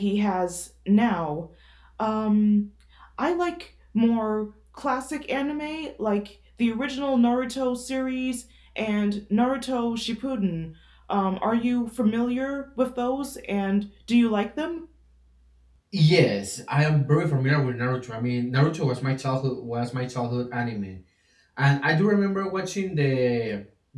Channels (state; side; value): identical; both; correlation 1.00